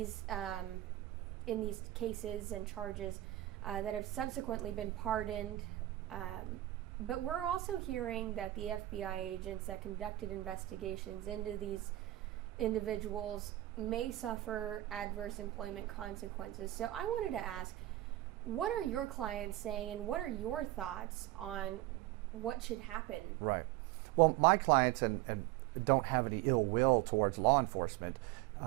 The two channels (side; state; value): left; quieter; 16.0 dB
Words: cases and charges that have subsequently been pardoned. But we're also hearing that the FBI agents that conducted investigations into these individuals may suffer adverse employment consequences. So I wanted to ask, what are your clients saying, and what are your thoughts on what should happen? Right. Well, my clients and don't have any ill will towards law enforcement.